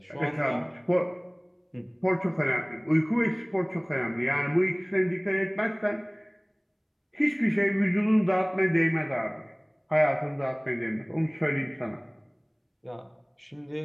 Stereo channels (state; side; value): identical; both; correlation 1.00